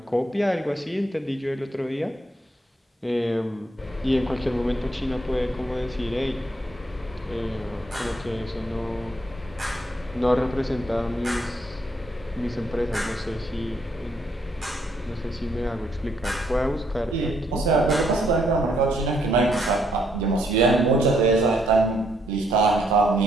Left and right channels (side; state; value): both; normal; correlation 0.72